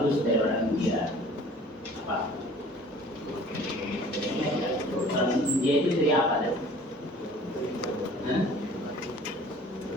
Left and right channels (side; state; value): both; normal; correlation 0.49